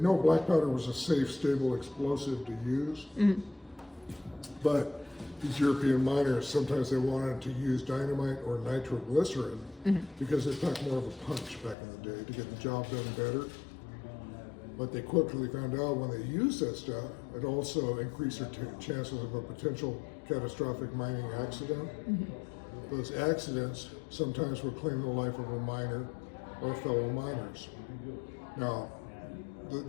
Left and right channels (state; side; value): drops out; right; at 11.8 s